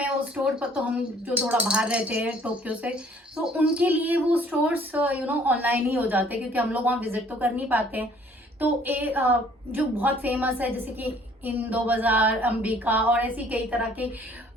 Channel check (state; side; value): normal; both; correlation 0.58